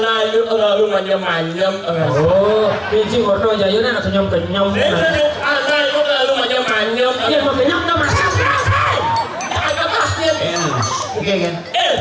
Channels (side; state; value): both; identical; correlation 1.00